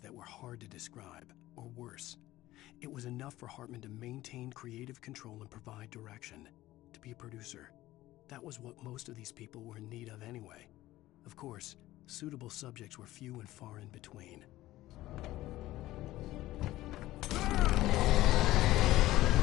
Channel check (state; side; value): quieter; right; 16.2 dB